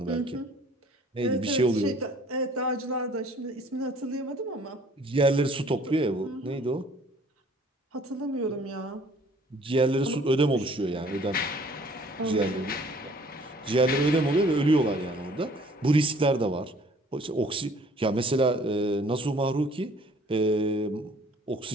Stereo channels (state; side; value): normal; both; correlation 0.55